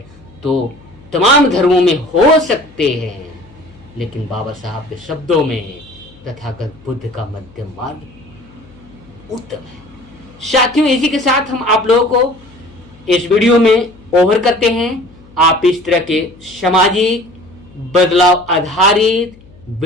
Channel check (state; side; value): noise; left; hum, 24 dB below the sound